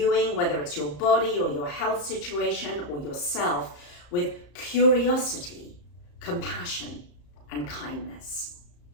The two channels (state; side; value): late; right; 34 ms